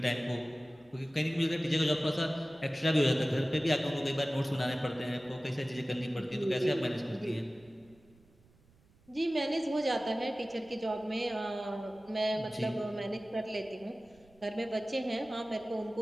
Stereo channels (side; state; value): right; noise; rumble, 29 dB below the sound